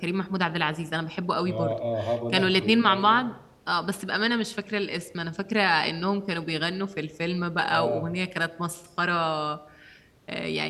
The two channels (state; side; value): identical; both; correlation 1.00